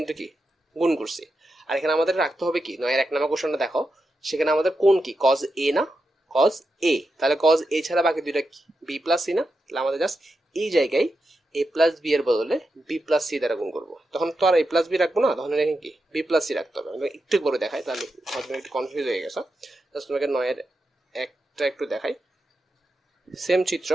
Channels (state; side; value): normal; both; correlation 0.88